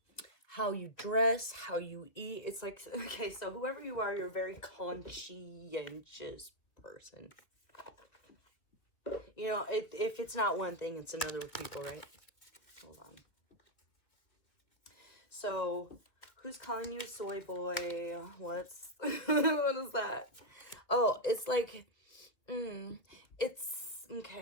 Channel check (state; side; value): late; right; 2.6 ms